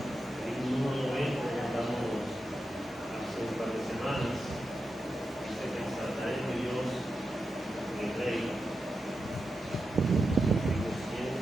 el himno número 90 que cantamos hace un par de semanas. Dice que exaltaré a Dios, mi Rey. Himno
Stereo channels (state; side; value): normal; both; correlation 0.89